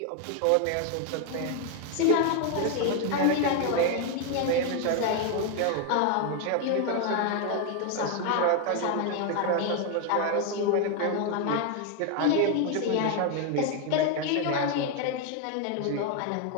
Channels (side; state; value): both; different; correlation 0.01